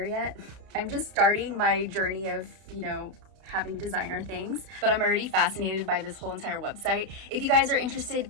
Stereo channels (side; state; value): left; late; 32 ms